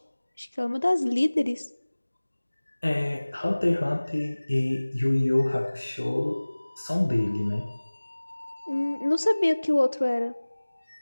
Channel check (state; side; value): inverted; both; correlation -1.00